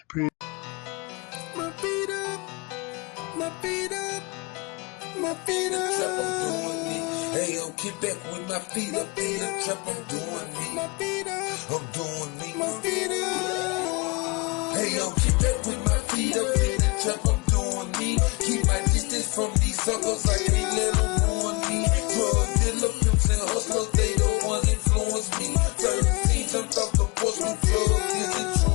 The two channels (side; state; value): right; quieter; 27.9 dB